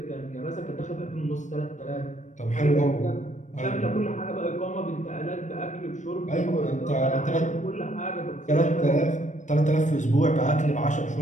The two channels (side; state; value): right; late; 0.35 ms